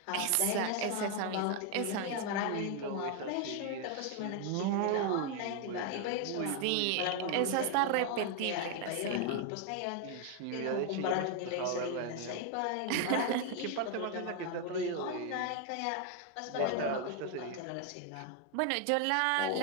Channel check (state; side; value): different; both; correlation 0.00